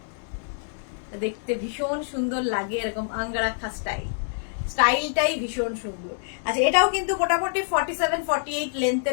দেখতে ভীষণ সুন্দর লাগে, এরকম আঙ্গারাখা স্টাইলটাই ভীষণ সুন্দর। আচ্ছা, এটাও কিন্তু মোটামুটি 47-48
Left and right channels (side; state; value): right; silent; digital silence